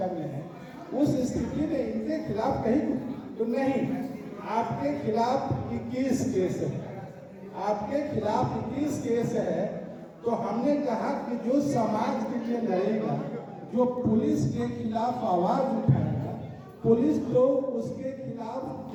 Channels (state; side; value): identical; both; correlation 1.00